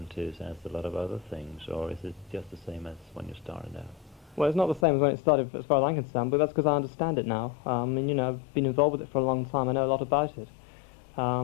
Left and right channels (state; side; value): drops out; right; at 4.9 s